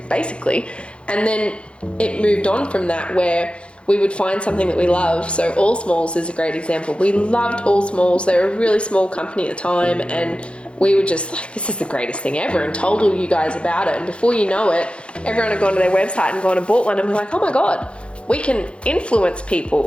basically. And then it moved on from that, where we would find something that we love. So All Smalls is a great example. We loved All Smalls. They were a really small company at the time, and we were just like, this is the greatest thing ever, and told all you guys about it. And before you know it, everyone had gone to their website and gone and bought one, and we're like, oh my God, we can influence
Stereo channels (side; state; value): right; late; 0.058 ms